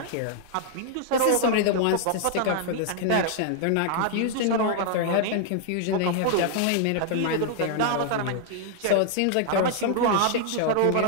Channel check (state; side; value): different; both; correlation 0.00